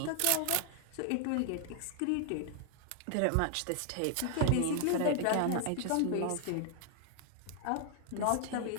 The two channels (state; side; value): different; both; correlation 0.00